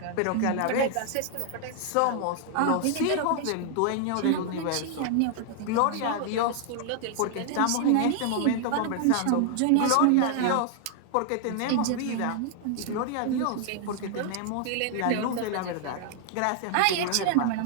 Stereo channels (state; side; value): different; both; correlation 0.00